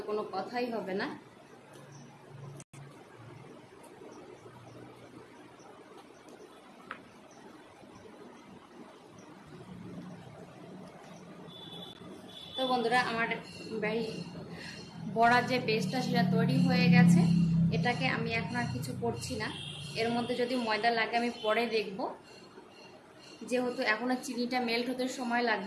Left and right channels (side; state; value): both; identical; correlation 1.00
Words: কোনো কথাই হবে না। তো বন্ধুরা, আমার বড়ার যে বেসটা সেটা তৈরি হয়ে গেছে। এটাকে আমি এখন আর কিছু করছি না। এর মধ্যে যদি ময়দা লাগে আমি পরে দেখব, যেহেতু এখনো চিনিটা মেল্ট হতে সময়